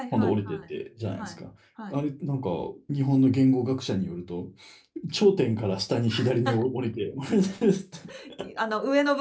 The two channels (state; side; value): identical; both; correlation 1.00